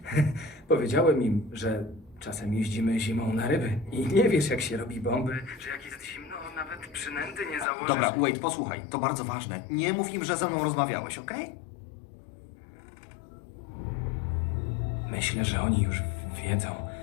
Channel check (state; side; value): drops out; right; at 7.7 s